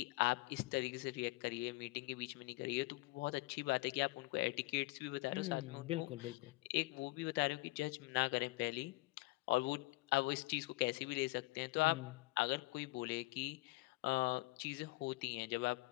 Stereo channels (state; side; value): quieter; right; 22.1 dB